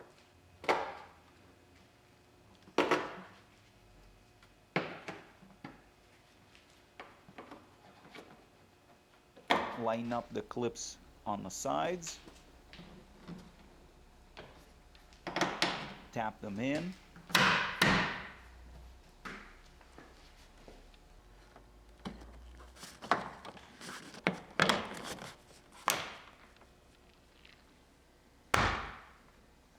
Line up the clips on the sides. Tap them in.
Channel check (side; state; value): both; identical; correlation 1.00